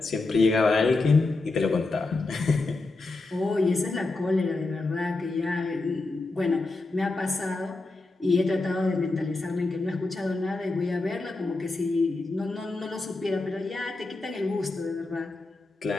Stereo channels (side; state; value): right; quieter; 3.3 dB